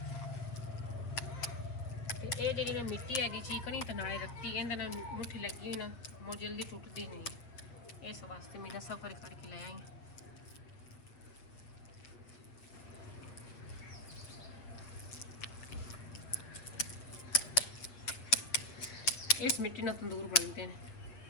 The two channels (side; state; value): right; late; 8.0 ms